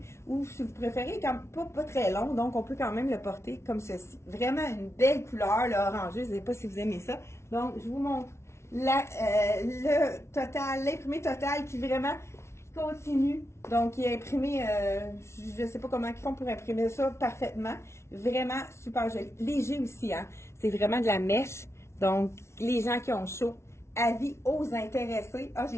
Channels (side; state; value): right; late; 0.13 ms